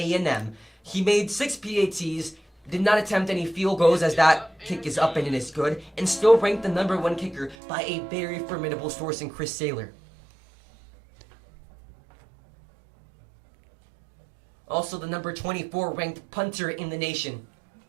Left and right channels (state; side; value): drops out; left; at 7.6 s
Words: He made 6 PATs, did not attempt any field goals as that kick is up and it is good, and still ranked the #1 kicker by a very formidable source in Chris Saylor. Also the number 24 ranked punter in the nation.